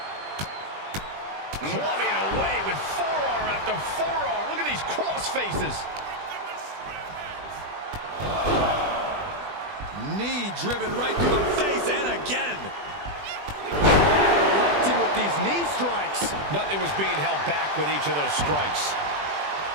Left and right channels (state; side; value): late; left; 20 ms